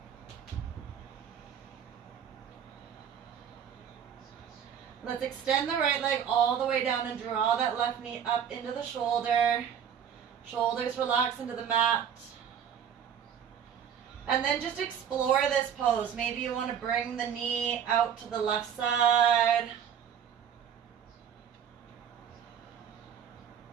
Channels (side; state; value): left; quieter; 8.3 dB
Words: Let's extend the right leg all the way down and draw that left knee up into the shoulder. Shoulders relax into the mat. And then just explore this pose. Maybe you want to bring the knee out to the left side.